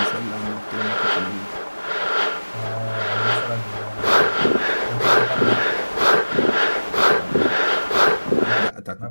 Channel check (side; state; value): both; inverted; correlation -1.00